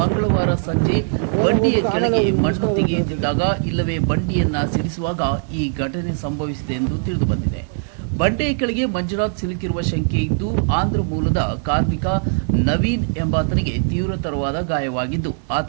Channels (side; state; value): left; silent; digital silence